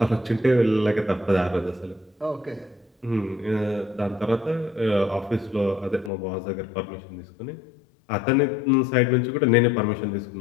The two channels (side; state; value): right; drops out; at 6.1 s